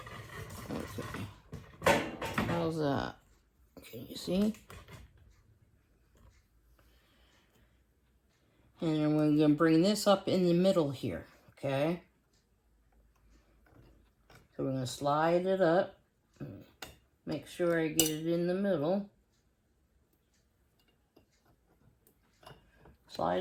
Okay. How's that? Can you see? And then we're going to bring this up in the middle here, okay? So we're going to slide it up. Make sure I get it in the middle.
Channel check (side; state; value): both; identical; correlation 1.00